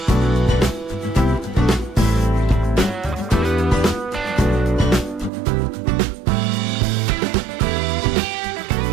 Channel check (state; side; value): drops out; left; at 5.3 s